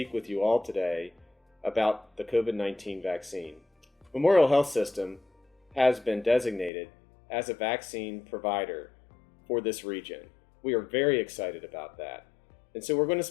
with you all today about the COVID-19 vaccine. Memorial Health System has been designated as a vaccine provider for this region. We are very excited about that. And so we're going to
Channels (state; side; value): drops out; right; at 6.7 s